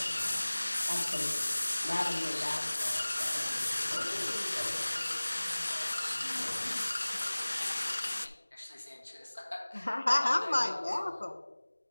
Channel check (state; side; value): inverted; both; correlation -1.00